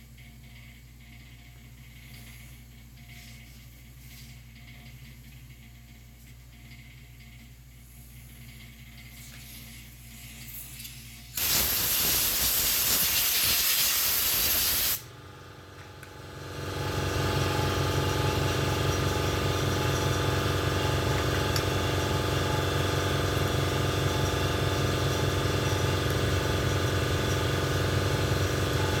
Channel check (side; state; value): both; identical; correlation 1.00